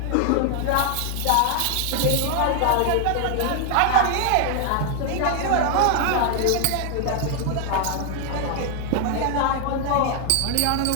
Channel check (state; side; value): different; both; correlation 0.00